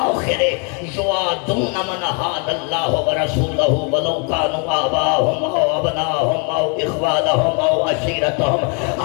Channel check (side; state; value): right; quieter; 36.0 dB